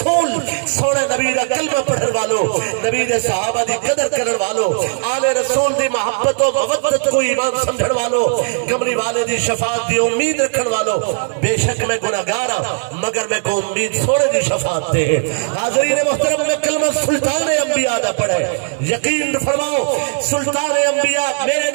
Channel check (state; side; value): silent; left; digital silence